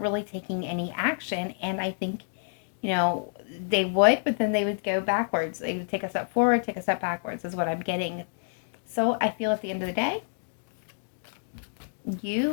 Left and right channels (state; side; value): silent; right; digital silence